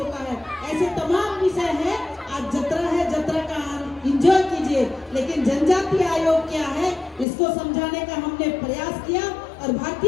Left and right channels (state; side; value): drops out; right; at 7.2 s